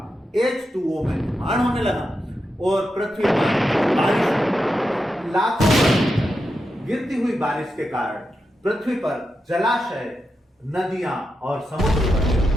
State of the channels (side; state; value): both; normal; correlation 0.87